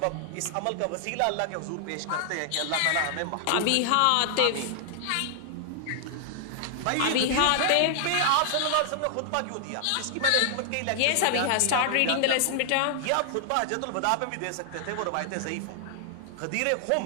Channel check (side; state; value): both; different; correlation -0.01